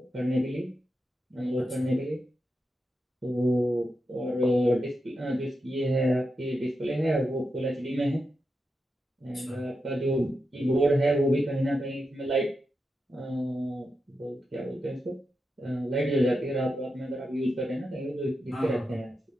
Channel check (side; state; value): both; normal; correlation 0.88